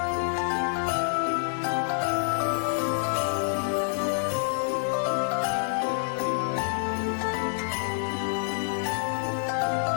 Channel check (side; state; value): right; silent; digital silence